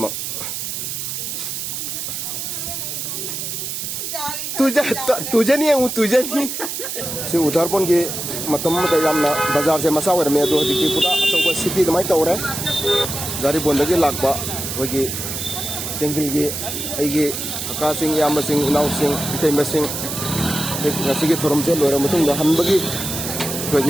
तुझे नहीं है वो तुझे नहीं से उधारपन के मतम यामना बाजार से मसा वरमे दो हजिकी पूरा अचौबा सिटी कमाई तौरे गारी बोंदगी लाकबा होगी सिंगलगी आइगी अका सिंग याम सिंग उनाव सिंग इतैम सिंग ngasiगी thorom se loira matung da hanbagi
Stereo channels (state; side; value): noise; right; hiss, 5 dB below the sound